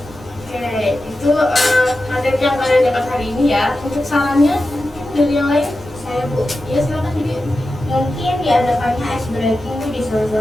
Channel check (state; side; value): noise; left; hum, 25 dB below the sound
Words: Oke, itu materi yang kalian dapat hari ini ya. Untuk sarannya dari yang lain? Saya, Bu. Ya, silakan Didi. Mungkin diadakannya ice breaking di